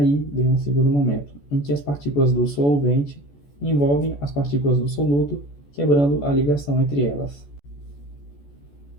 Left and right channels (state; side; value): late; right; 14 ms